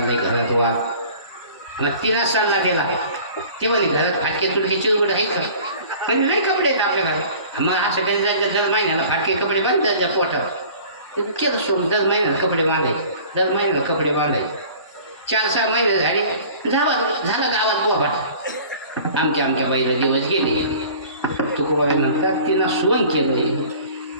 घरात वा. मग तिनं सल्ला दिला. ते म्हणे घरात फाटके तुडके चिरगुड आहेत का. म्हणजे नाही कपडे आहेत आपल्या घरात. मग असं कधी जायचं दर महिन्याला फाटके कपडे बांधतात त्या पोटावर. केलं सोडून दर महिन्याला कपडे बांधायचे. दर महिन्याला कपडे बांधायचे. 4-6 महिने झाले झाला गावात पोपट आमच्या बाईला दिवस गेले. तुकोबाई म्हणतात तिनं सोन केलं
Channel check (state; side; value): inverted; both; correlation -0.46